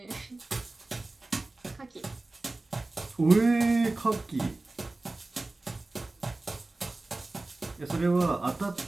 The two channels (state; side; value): quieter; left; 3.1 dB